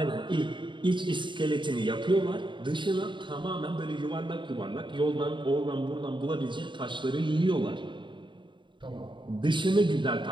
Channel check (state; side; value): late; left; 0.23 ms